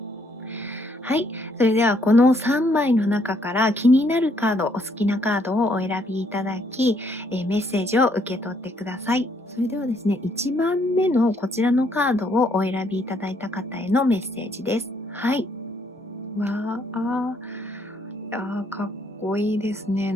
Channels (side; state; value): both; normal; correlation 0.70